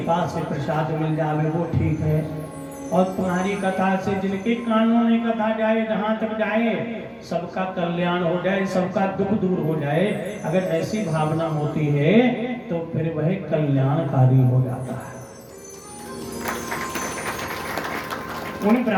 से प्रसाद मिल जावे वो ठीक है, और तुम्हारी कथा से जिनके कानों में कथा जाए, जहां तक जाए सबका कल्याण हो जाए, सबका दुख दूर हो जाए, अगर ऐसी भावना होती है तो फिर वह कल्याणकारी हो जाता है। उन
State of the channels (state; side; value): identical; both; correlation 1.00